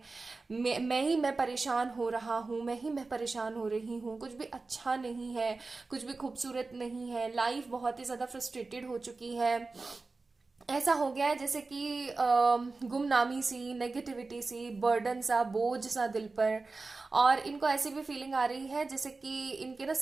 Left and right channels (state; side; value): quieter; left; 3.8 dB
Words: परेशान हो रहा हूँ, मैं परेशान हो रही हूँ, कुछ भी अच्छा नहीं है, कुछ भी खूबसूरत नहीं है, लाइफ बहुत ही ज्यादा फ्रस्ट्रेटेड हो चुकी है। ऐसा हो गया है जैसे कि गुमनामी सी, नेगेटिविटी सी, बर्डन सा, बोझ सा दिल पर। और इनको ऐसी भी फीलिंग आ रही है जैसे कि इनके ना